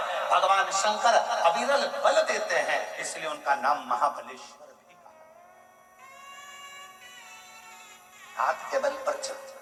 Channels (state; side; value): identical; both; correlation 1.00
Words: भगवान शंकर अविरल बल देते हैं, इसलिए उनका नाम महाबलेश्वर भी कहा। हाथ के बल पर चलते।